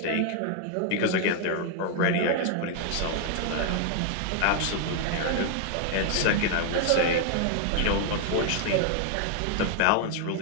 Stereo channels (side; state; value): both; different; correlation 0.00